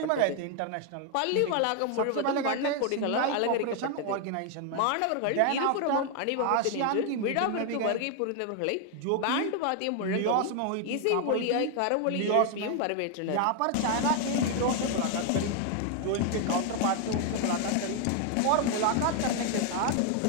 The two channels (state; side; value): different; both; correlation 0.00